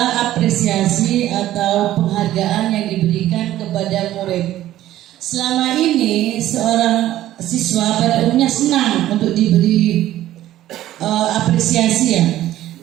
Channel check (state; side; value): quieter; left; 13.8 dB